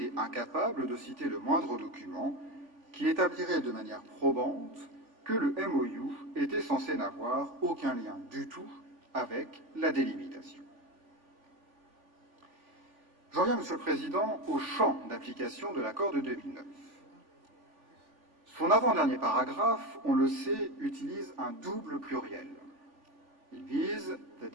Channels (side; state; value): left; late; 3.5 ms